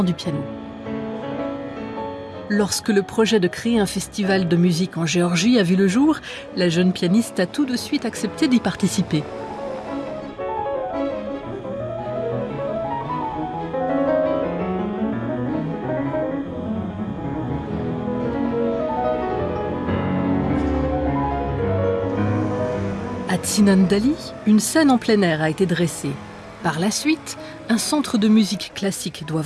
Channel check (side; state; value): both; identical; correlation 1.00